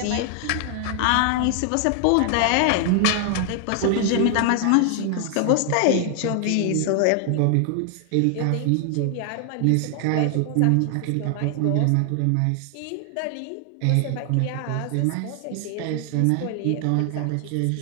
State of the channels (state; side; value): different; both; correlation 0.00